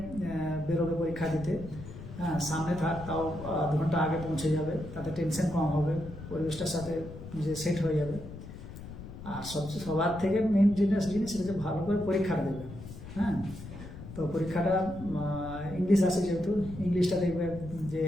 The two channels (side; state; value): left; noise; rumble, 12 dB below the sound